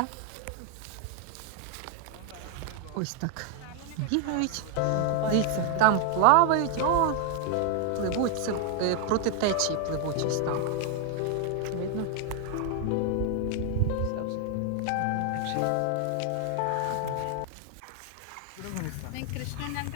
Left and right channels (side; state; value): both; different; correlation 0.00